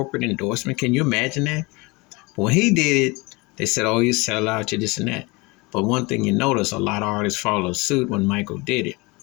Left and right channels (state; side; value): quieter; right; 25.3 dB